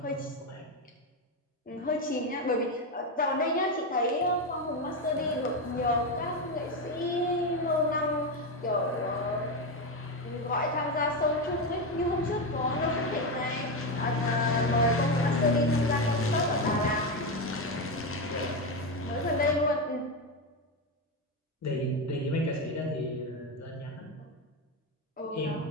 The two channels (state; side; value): normal; both; correlation 0.11